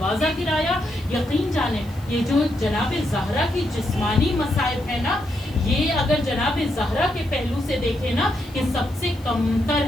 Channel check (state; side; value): noise; left; hiss, 25 dB below the sound